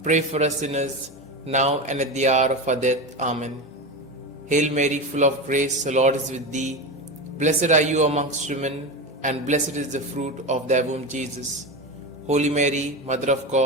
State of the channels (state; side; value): normal; both; correlation 0.21